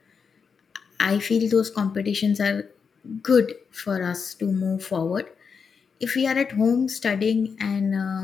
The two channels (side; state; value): right; quieter; 5.9 dB